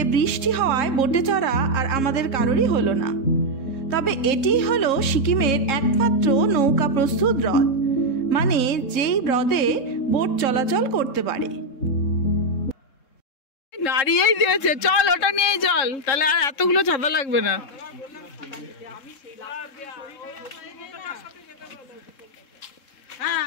বৃষ্টি হওয়ায় বোটে চড়া আর আমাদের কারোরই হলো না। তবে এটি হলো সিকিমের একমাত্র নৌকা প্রস্তুত হ্রদ, মানে যেই হ্রদে বোট চলাচল করতে পারে। নাড়িয়েই দিয়েছে, চল ওটা নিয়েই চল, তাহলে আর এতগুলো ছাতা লাগবে না।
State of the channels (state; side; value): late; right; 3.7 ms